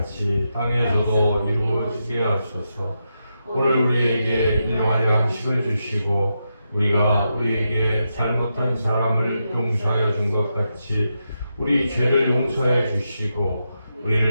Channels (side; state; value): both; inverted; correlation -0.86